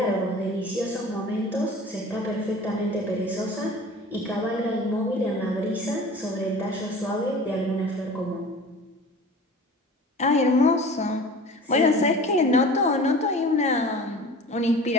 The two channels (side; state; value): both; normal; correlation 0.40